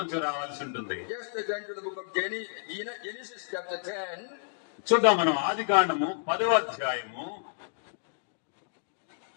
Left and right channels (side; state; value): right; silent; digital silence